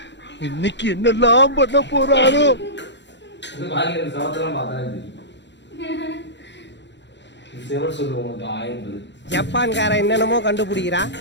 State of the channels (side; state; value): right; late; 0.52 ms